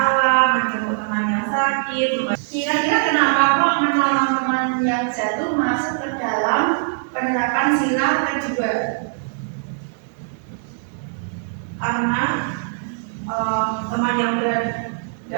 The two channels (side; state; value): left; silent; digital silence